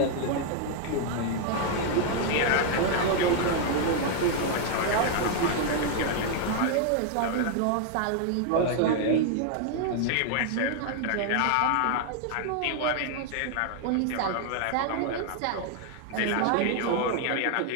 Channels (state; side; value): different; both; correlation 0.00